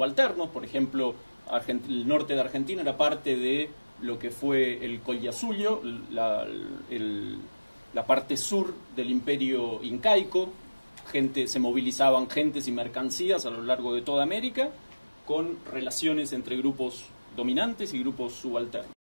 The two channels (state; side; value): inverted; both; correlation -1.00